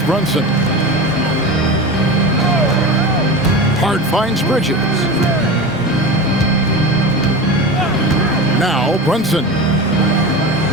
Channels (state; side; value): normal; both; correlation 0.28